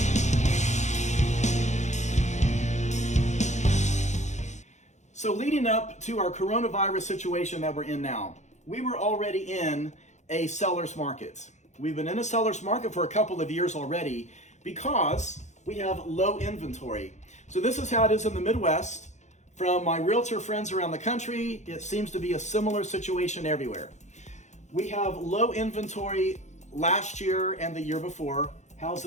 So leading up to our coronavirus situation that we're in now, we were already in a seller's market. We've been in a seller's market for a couple of years already because we have low inventory. So this is how it is in the Midwest. From my realtor friends around the country, it seems to be a similar situation everywhere. We have low inventory last year and the year before.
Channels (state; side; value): late; right; 0.34 ms